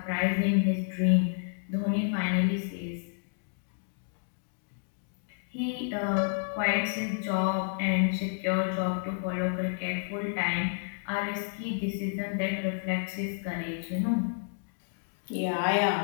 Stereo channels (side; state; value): right; silent; digital silence